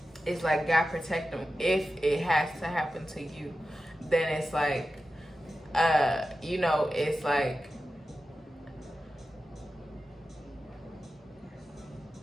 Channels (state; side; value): normal; both; correlation 0.92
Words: It's like God protect them. If it has to happen to you, then it's like, you know, it's like,